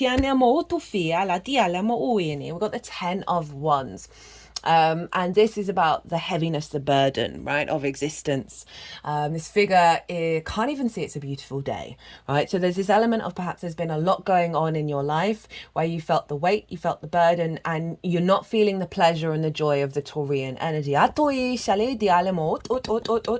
10 of Wands. And this is about the heaviness, the burden, right, of existence. This figure can't even see it's a beautiful day, right? So there's this element of perhaps there's been a lot going on in your life where you felt the weight, you felt the burden, and you're not feeling the pleasure and the joy of the Taurian energy. It's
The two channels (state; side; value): identical; both; correlation 1.00